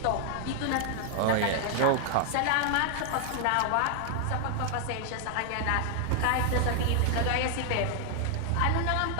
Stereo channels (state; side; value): different; both; correlation 0.00